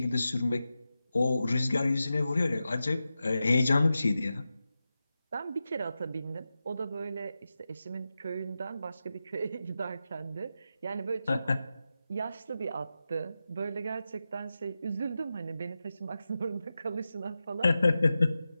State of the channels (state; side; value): inverted; both; correlation -0.91